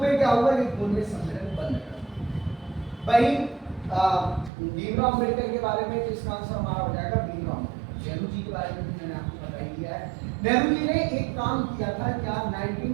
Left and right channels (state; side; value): drops out; left; at 4.5 s